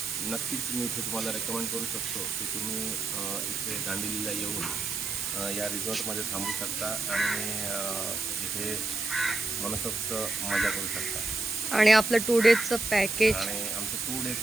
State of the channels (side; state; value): right; noise; hiss, 3 dB below the sound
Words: नक्कीच मी इथे तुम्हाला रेकमेंड करू शकतो की तुम्ही इथे दांडेलीला येऊन या रिसॉर्टमध्ये थांबू शकता आणि इथे मनसोक्त मजा करू शकता. आणि आपलं 2 डेजचं पॅकेज. आणि आमचं 2